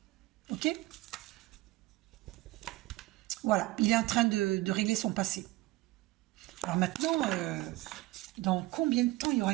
Ok? Voilà, il est en train de régler son passé. Alors maintenant, dans combien de temps il y aura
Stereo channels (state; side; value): quieter; left; 18.9 dB